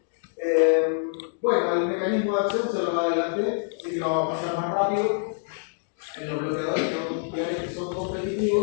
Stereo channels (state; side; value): silent; right; digital silence